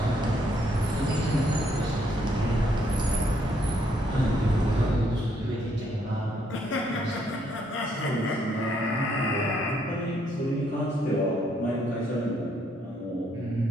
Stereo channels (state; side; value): normal; both; correlation 0.71